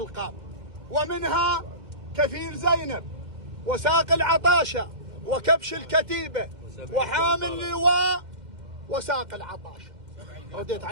ومنها كفيل زينب، وساق العطاشة، وكبش الكتيبة، وحامل اللواء، وساق العطاشة، رديت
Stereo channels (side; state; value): left; late; 2.1 ms